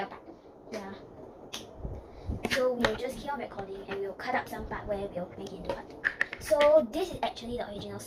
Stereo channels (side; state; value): both; identical; correlation 1.00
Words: a part. Yeah. So we'll just keep on recording and we'll cut up some part where we'll make it into part 2. So this is actually the original